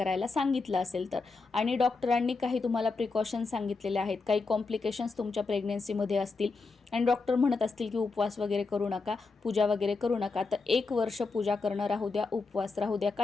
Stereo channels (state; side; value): quieter; right; 4.1 dB